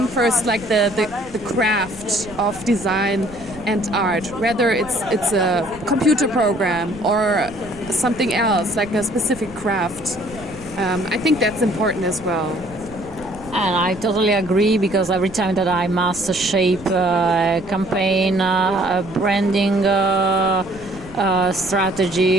first the craft of design and art, whether it's a computer program or something else, like a specific craft. I think that's important as well. And I totally agree, because every time that I must shape a campaign, a branding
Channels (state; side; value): noise; right; rumble, 19 dB below the sound